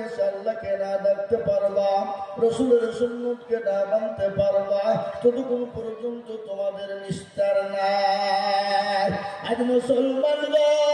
এসে আল্লাহকে না ডাকতে পারবা, রসুলের সুন্নতকে না মানতে পারবা, ততক্ষণ পর্যন্ত তোমাদের নিস্তার নাই। আজ মুসলমান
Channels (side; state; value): both; identical; correlation 1.00